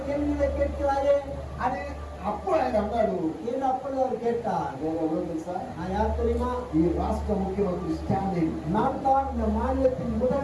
கேள்விகளை கேட்கிறாயே అని అప్పుడు ఆయన అన్నాడు, என்று அப்பொழுது அவர் கேட்டார். నేను ఎవరో తెలుసా? நான் யார் தெரியுமா? ఈ రాష్ట్ర ముఖ్యమంత్రి స్టాలిన్. நான் தான் இந்த மாநிலத்தின்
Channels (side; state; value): both; identical; correlation 1.00